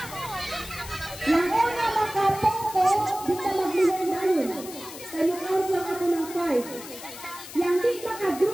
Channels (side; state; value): left; noise; hiss, 13 dB below the sound